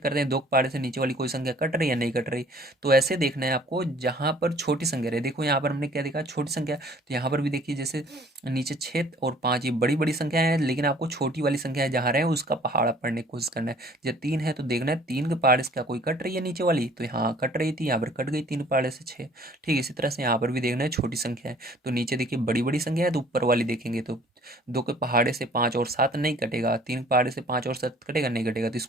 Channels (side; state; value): both; normal; correlation 0.55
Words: करते हैं, 2 के पहाड़े से नीचे वाली कोई संख्या कट रही है या नहीं कट रही। तो ऐसे देखना है आपको जहां पर छोटी संख्या रहे। देखो यहाँ पर हमने क्या देखा, छोटी संख्या, तो यहाँ पर भी देखिए जैसे नीचे 6 और 5 ये बड़ी बड़ी संख्या है, लेकिन आपको छोटी वाली संख्या जहाँ रहे उसका पहाड़ा पढ़ने की कोशिश करना है। जब 3 है तो देखना है 3 के पहाड़े से क्या कोई कट रही है नीचे वाली, तो यहाँ कट रही थी, यहाँ पर कट गई 3 पहाड़े से 6, ठीक है। इसी तरह से यहाँ पर भी देखना है छोटी संख्या है, तो नीचे देखिए बड़ी बड़ी संख्या है तो ऊपर वाली देखेंगे, तो 2 के पहाड़े से 5 और 7 नहीं कटेगा, 3 के पहाड़े से 5 और 7 कटेगा नहीं कटेगा, तो